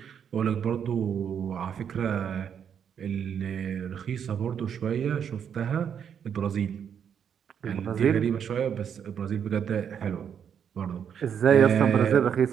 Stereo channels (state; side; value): quieter; left; 8.0 dB